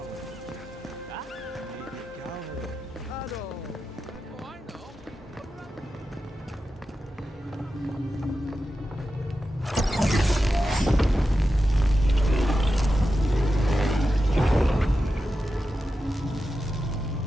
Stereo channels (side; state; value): both; normal; correlation 0.91